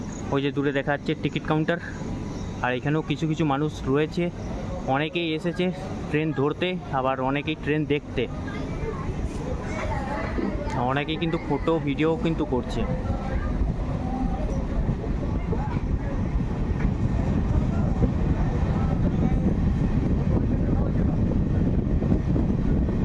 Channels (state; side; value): identical; both; correlation 1.00